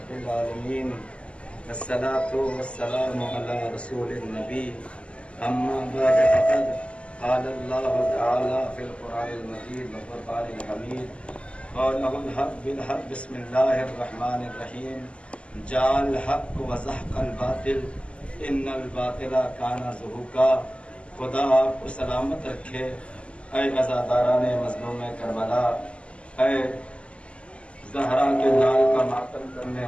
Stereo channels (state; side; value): late; right; 0.056 ms